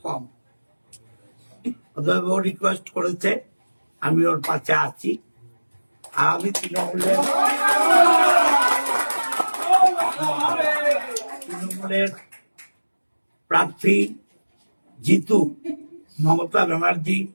কম। অতএব ও রিকোয়েস্ট করেছে, আমি ওর পাশে আছি। আর আমি তৃণমূলের প্রার্থী জিতু মমতা ব্যানার্জি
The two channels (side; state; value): both; inverted; correlation -1.00